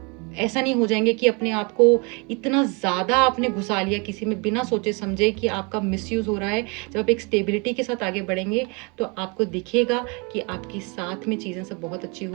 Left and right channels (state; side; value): quieter; left; 31.3 dB